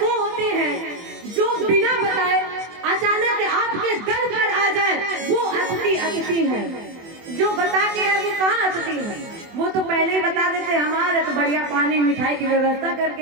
होते हैं जो बिना बताए अचानक आपके दर पर आ जाए, वो अतिथि अतिथि है। जो बता के है वो कहाँ अतिथि है? वो तो पहले ही बता देते हमारे तो बढ़िया पानी मिठाई की व्यवस्था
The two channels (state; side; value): late; left; 24 ms